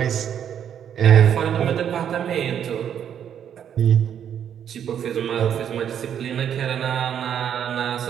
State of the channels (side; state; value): left; quieter; 9.0 dB